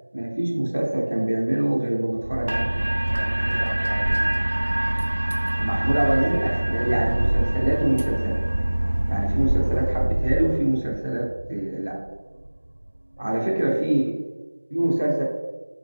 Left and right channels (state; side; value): inverted; both; correlation -1.00